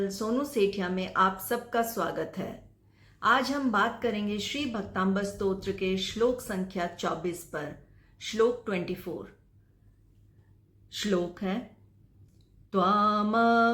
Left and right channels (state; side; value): identical; both; correlation 1.00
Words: सोनू सेठिया में आप सबका स्वागत है। आज हम बात करेंगे श्री भक्तांबर स्तोत्र के श्लोक संख्या 24 पर। श्लोक 24 श्लोक है